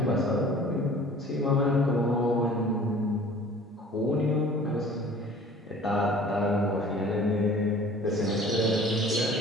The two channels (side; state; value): both; normal; correlation 0.48